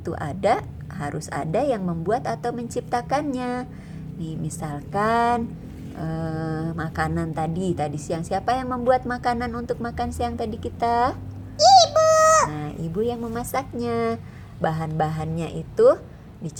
ada, harus ada yang membuat atau menciptakannya. Nih, misalkan makanan tadi siang, siapa yang membuat makanan untuk makan siang tadi kita? Ibu. Nah, ibu yang memasaknya. Bahan-bahannya itu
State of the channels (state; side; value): identical; both; correlation 1.00